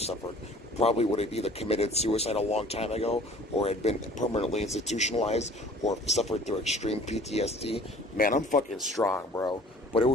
probably would have either committed suicide a long time ago, or had been permanently institutionalized, or suffered through extreme PTSD. Man, I'm fucking strong, bro. But it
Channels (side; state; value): both; normal; correlation 0.50